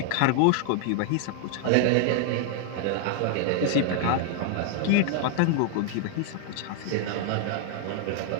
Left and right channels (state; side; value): different; both; correlation 0.00